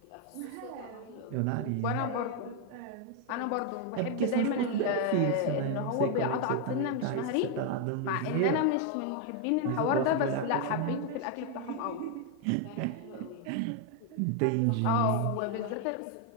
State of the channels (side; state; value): both; different; correlation 0.01